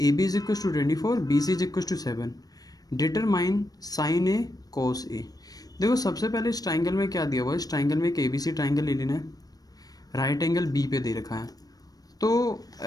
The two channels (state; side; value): late; right; 0.18 ms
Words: B is equal to 24, B C is equal to 7, determine sine A cos A. देखो सबसे पहले इस ट्राइंगल में क्या दिया हुआ है, इस ट्राइंगल में एक ए बी सी ट्राइंगल ले लेना है, राइट एंगल बी पे दे रखा है। तो